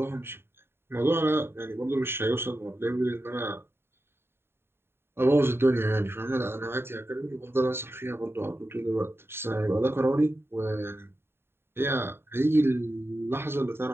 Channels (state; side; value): late; left; 0.11 ms